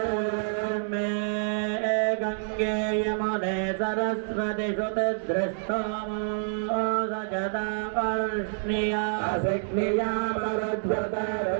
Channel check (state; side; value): silent; left; 60 dB below the other